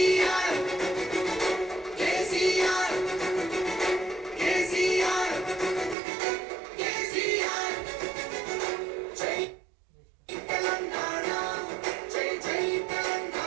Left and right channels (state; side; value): drops out; left; at 6.0 s